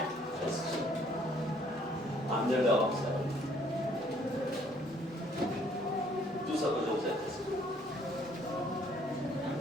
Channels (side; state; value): both; normal; correlation 0.62